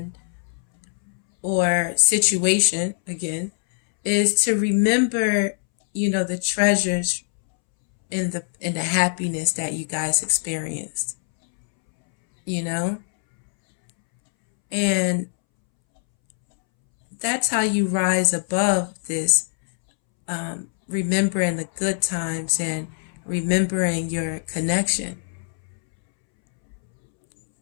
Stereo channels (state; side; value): silent; right; 64 dB below the other